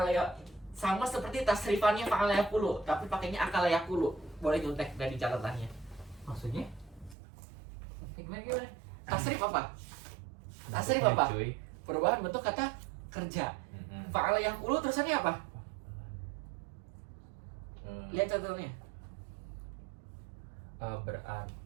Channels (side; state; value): left; drops out; at 7.2 s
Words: ya, sama seperti tasrifannya fa'ala yakulu, tapi pakainya akala yakulu. Boleh nyontek dari catatannya. Maksudnya? Gimana? Tasrif apa? Tasrif apa? Cuy. Perubahan bentuk kata kerja. Mm-mm. Fa'ala yakulu terusannya apa? Hmm. Lihat catatannya. Berarti.